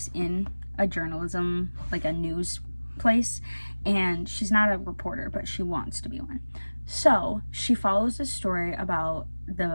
in a journalism, like a news place, and she's not a reporter, but she wants to be one. So she follows a story about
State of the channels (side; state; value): both; inverted; correlation -1.00